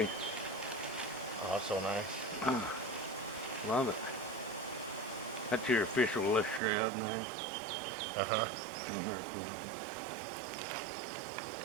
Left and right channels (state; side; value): drops out; left; at 6.6 s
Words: Oh, so nice. Love it. That's your official left shroud now. Uh-huh. Oh, very cool.